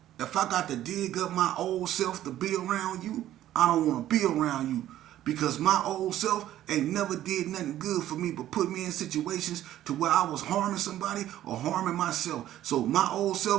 If I got to dig up my old self to be around you, I don't want to be around you. Because my old self ain't never did nothing good for me but put me in situations to where I was harming somebody or harming myself. So my old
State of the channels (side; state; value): left; quieter; 12.9 dB